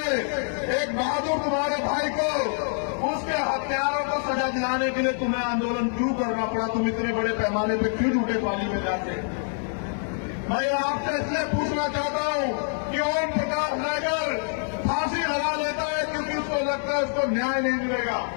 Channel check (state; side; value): silent; right; 61 dB below the other